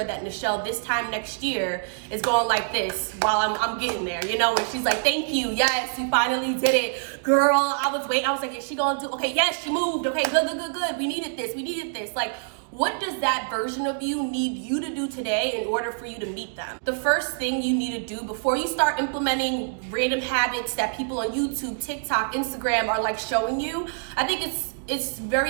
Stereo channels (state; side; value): silent; left; digital silence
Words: that Nichelle this time next year is going like this while I'm getting there, you know? And she's like, thank you, yes, you finally did it. Girl, I was waiting, I was like, is she gonna do, okay, yes, she moved, okay, good, we needed this. Like, what does that version of you need you to do today in order for you to meet them? The first thing you need to do before you start implementing random habits that people on YouTube, TikTok, Instagram are like showing you, I think it's